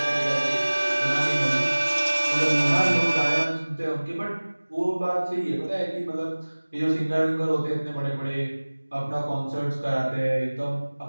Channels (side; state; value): both; inverted; correlation -1.00